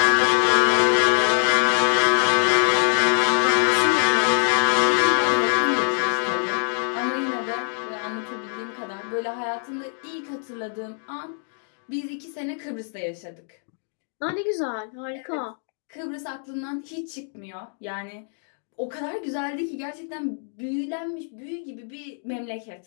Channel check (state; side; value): silent; right; digital silence